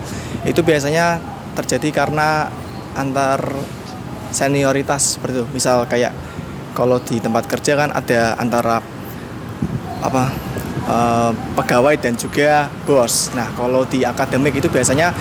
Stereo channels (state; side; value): identical; both; correlation 1.00